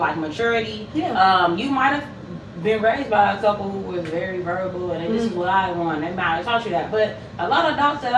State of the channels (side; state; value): both; identical; correlation 1.00